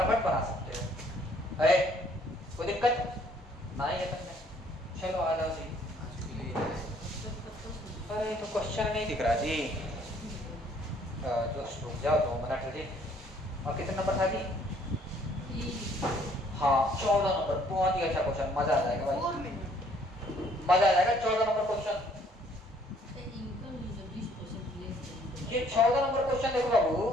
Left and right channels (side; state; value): both; normal; correlation 0.62